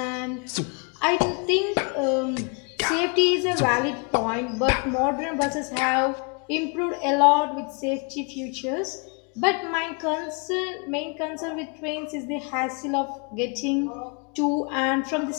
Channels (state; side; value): quieter; right; 35.3 dB